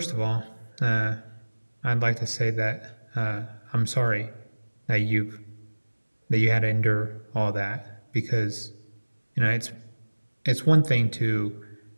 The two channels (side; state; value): both; inverted; correlation -1.00